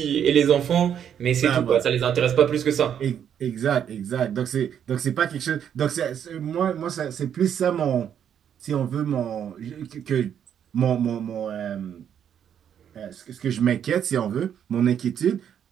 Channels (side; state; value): left; quieter; 8.9 dB